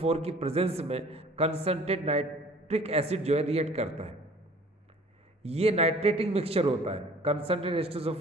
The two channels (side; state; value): both; normal; correlation 0.50